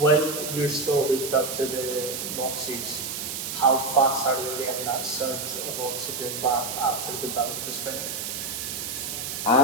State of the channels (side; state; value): right; noise; hiss, 5 dB below the sound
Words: you're still hooked up to the Moxys, how fast are they getting that surge of oxygen back after the bout is finished?